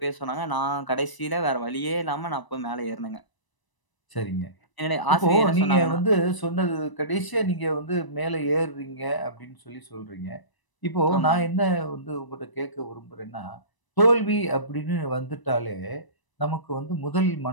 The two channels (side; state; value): right; late; 1.0 ms